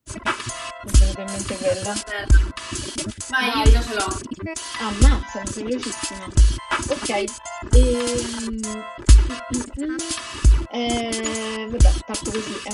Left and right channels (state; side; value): identical; both; correlation 1.00